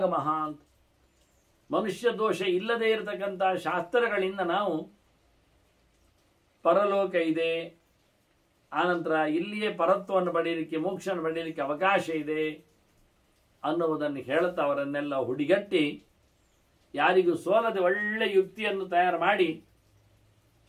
ಅಂತ, ಮನುಷ್ಯ ದೋಷ ಇಲ್ಲದೆ ಇರತಕ್ಕಂಥ ಶಾಸ್ತ್ರಗಳಿಂದ ನಾವು ಪರಲೋಕ ಇದೆ, ಆನಂತರ ಇಲ್ಲಿಯೇ ಪರತ್ವವನ್ನು ಪಡೆಯಲಿಕ್ಕೆ, ಮೋಕ್ಷವನ್ನು ಪಡೆಯಲಿಕ್ಕೆ ಅವಕಾಶ ಇದೆ ಅನ್ನುವುದನ್ನು ಹೇಳುತ್ತಾ ಅವರನ್ನೆಲ್ಲ ಹುಡಿಗಟ್ಟಿ ಯಾರಿಗೂ ಸೋಲದೆ ಒಳ್ಳೆ ಯುಕ್ತಿಯನ್ನು ತಯಾರು ಮಾಡಿ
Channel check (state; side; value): identical; both; correlation 1.00